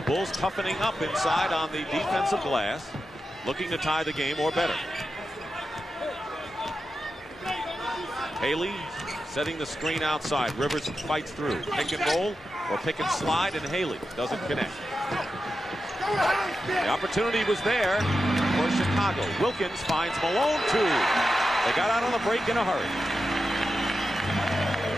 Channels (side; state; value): both; normal; correlation 0.90